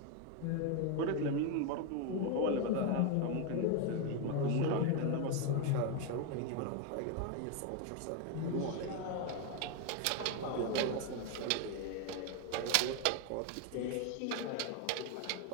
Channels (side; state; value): both; different; correlation 0.01